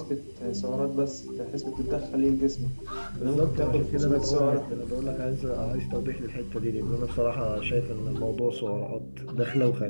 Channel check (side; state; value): both; inverted; correlation -1.00